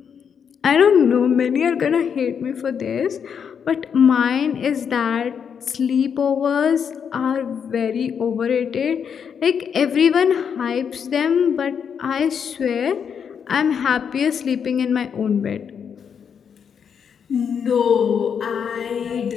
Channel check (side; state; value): right; quieter; 7.2 dB